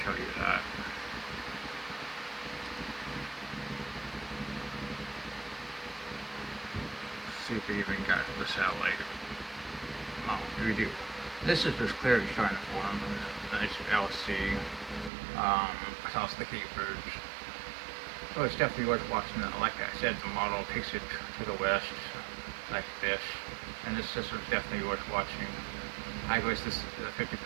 show you that. See if we even got the satellite. Oh, we do. This is just clearly starting to form. Nice LC, across the Cape Verdes. So it's definitely worth watching. Like I said, the model takes it to the west, like this. And this system is definitely worth watching. I agree with this 50%.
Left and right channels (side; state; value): left; drops out; at 15.1 s